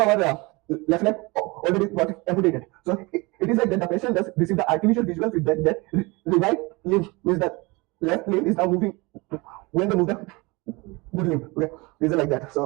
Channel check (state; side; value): quieter; left; 25.2 dB